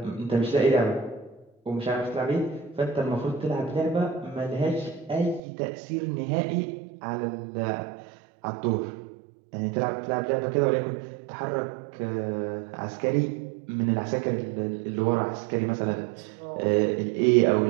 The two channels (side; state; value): left; drops out; at 5.4 s